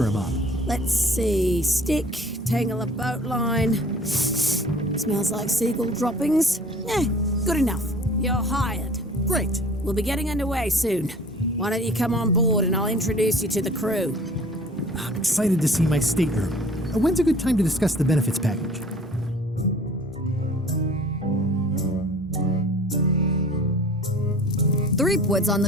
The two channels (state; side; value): normal; both; correlation 0.48